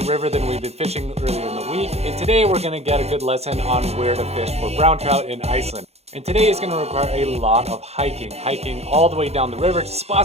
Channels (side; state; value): left; late; 0.30 ms